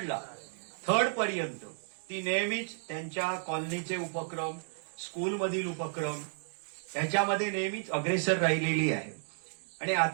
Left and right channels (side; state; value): left; silent; digital silence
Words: थर्ड पर्यंत ती नेहमीच त्यांच्या कॉलनीचे उपक्रम, स्कूलमधील उपक्रम त्याच्यामध्ये नेहमीच अग्रेसर राहिलेली आहे. आणि